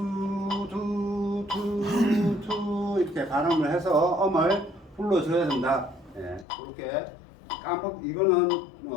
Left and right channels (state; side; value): drops out; right; at 6.5 s